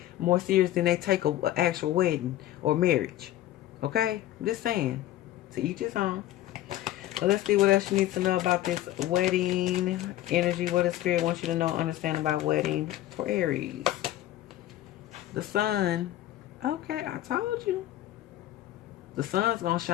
more serious than they take an actual wedding or marriage. Okay? I'm just saying. To each his own. So let's see what else you need to know about this wedding energy. What does Spirit wants you to know, understand about wedding for Aries? The sun. Okay, I told you. The sun's going to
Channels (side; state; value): right; quieter; 14.1 dB